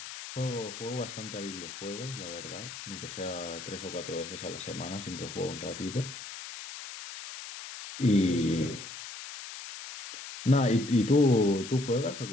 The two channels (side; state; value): left; noise; hiss, 11 dB below the sound